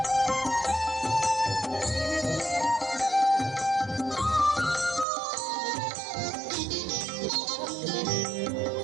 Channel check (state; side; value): drops out; left; at 5.1 s